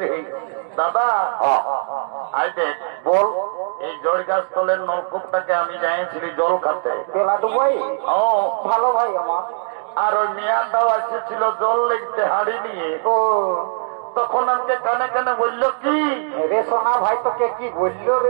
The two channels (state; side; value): silent; left; digital silence